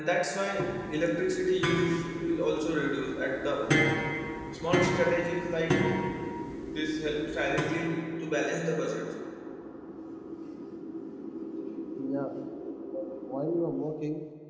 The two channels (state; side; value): identical; both; correlation 1.00